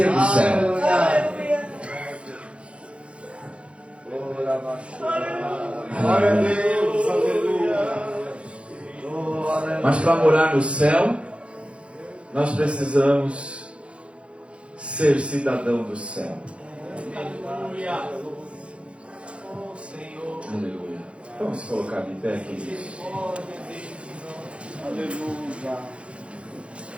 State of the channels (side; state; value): left; late; 0.060 ms